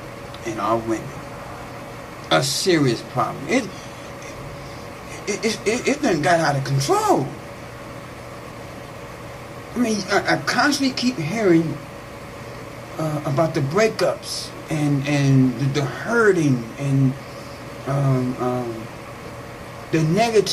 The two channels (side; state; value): both; identical; correlation 1.00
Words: and our women. A serious problem. It done got out of control. I mean, I constantly keep hearing about the breakups and the hurting and the